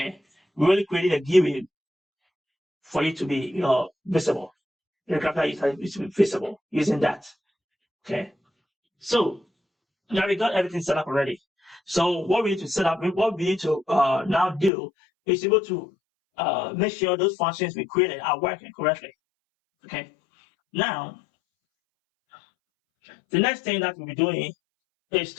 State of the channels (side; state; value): right; drops out; at 14.7 s